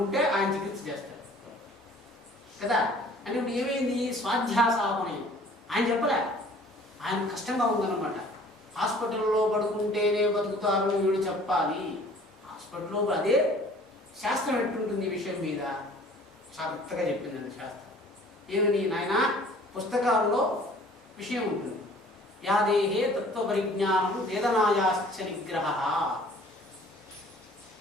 ఆయన చికిత్స చేస్తాడు కదా. అంటే ఇప్పుడు ఏమైంది? స్వాధ్యాసాపనయం. ఆయన చెప్పలే, ఆయన కష్టంగా ఉందన్నమాట. హాస్పిటల్లో పడుకుంటేనే బతుకుతారు వీడు చెప్పాలి. హాస్పిటల్లో అదే శాస్త్రం ఎట్టుంటుంది ఈ విషయం మీద చక్కగా చెప్పిందండి శాస్త్రం. ఏమని నాయన, పుస్తకాల్లో విషయం ఉంటుంది. యాదేహే తత్వపరిజ్ఞానం వేదనాయాశ్చ నిగ్రహ.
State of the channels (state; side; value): normal; both; correlation 0.52